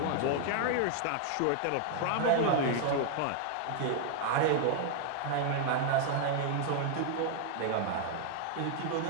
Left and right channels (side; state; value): both; different; correlation 0.00